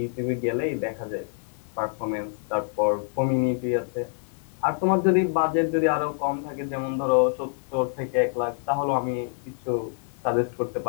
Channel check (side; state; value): right; silent; digital silence